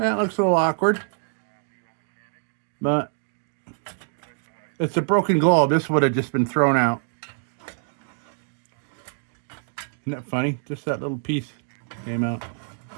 looks a little awkward, but it's a broken globe. This would have just been thrown out. Isn't that funny? Just that little piece came out.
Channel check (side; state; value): left; silent; digital silence